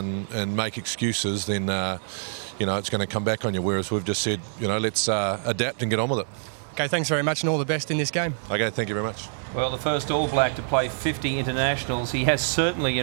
make excuses, then you know it's going to come back on you. Whereas we've just said, you know, let's adapt and get on with it. Okay, thanks very much, and all the best in this game. Okay, thank you very much. Well, the first All Black to play 50 internationals. He has certainly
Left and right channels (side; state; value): left; silent; digital silence